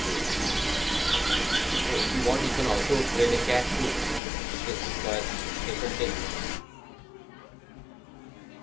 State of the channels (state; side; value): drops out; right; at 4.2 s